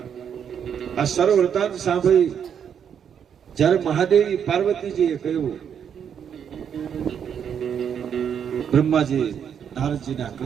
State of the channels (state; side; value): quieter; left; 8.1 dB